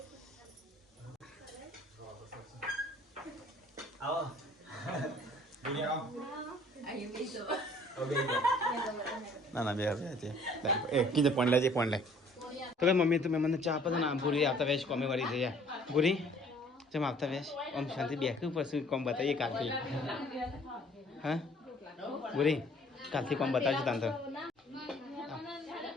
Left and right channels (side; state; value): both; normal; correlation 0.56